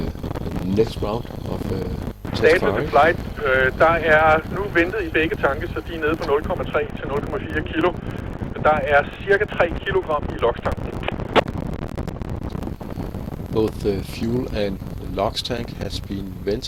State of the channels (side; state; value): both; identical; correlation 1.00